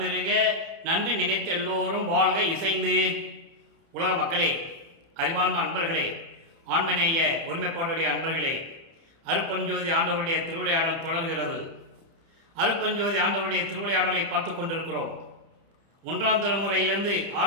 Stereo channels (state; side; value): late; left; 30 ms